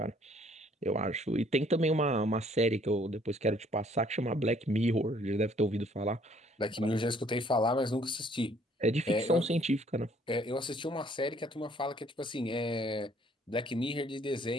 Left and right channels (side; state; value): both; normal; correlation 0.61